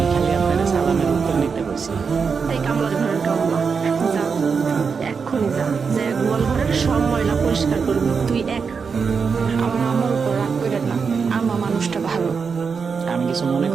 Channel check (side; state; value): left; quieter; 5.6 dB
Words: খালি আপনার সালামের উত্তর নিতে বলছি। এই কামলার ঘরের কামলা, যা এক্ষুনি যা, যে গোয়াল ঘরের সব ময়লা পরিষ্কার করবি তুই এক। আমার আমার উপর রাগ করেন না, আমার মানুষটা ভালো। আমি কিছু মনে